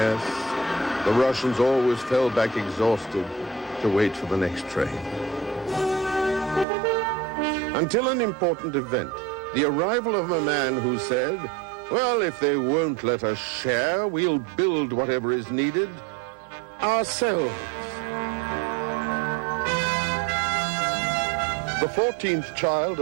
the Russians always fell back exhausted to wait for the next train. Until an important event, the arrival of a man who said, well, if they won't let us share, we'll build whatever is needed ourselves. The 14th child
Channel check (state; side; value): drops out; left; at 6.7 s